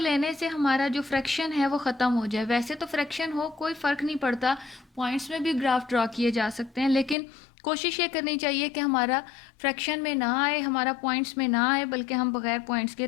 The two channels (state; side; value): drops out; right; at 7.2 s